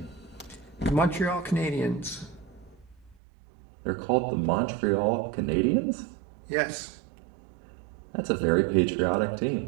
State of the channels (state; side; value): drops out; left; at 3.2 s